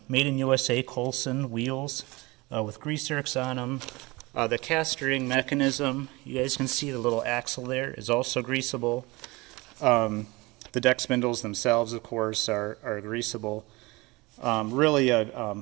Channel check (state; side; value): quieter; left; 23.4 dB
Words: made in USA Coulson wheels with grease zerks on them. The cast ring mechanism, you guys can see the little axle there, is also greasable. The deck spindles themselves, of course, are greasable. Really a